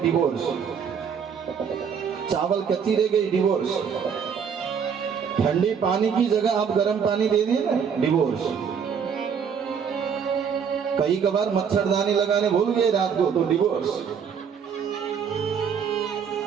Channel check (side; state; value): left; quieter; 6.9 dB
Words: चावल कच्ची रह गई डिवोर्स, ठंडे पानी की जगह आप गर्म पानी दे दिए ना डिवोर्स। कई कबार मच्छरदानी लगाने भूल गए रात को तो डिवोर्स।